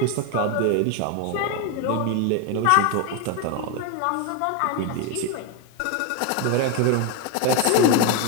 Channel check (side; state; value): both; different; correlation 0.02